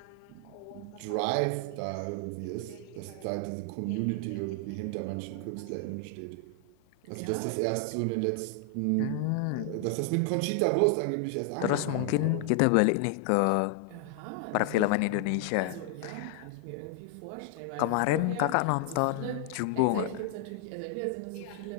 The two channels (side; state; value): both; different; correlation 0.00